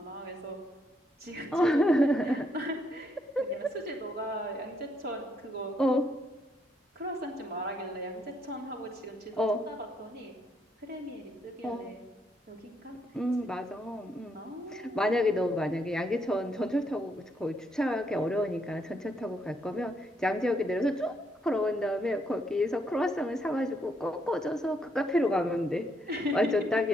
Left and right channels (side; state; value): both; normal; correlation 0.74